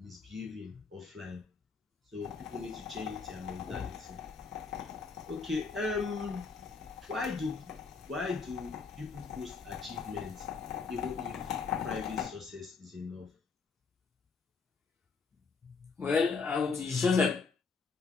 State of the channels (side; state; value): right; quieter; 5.0 dB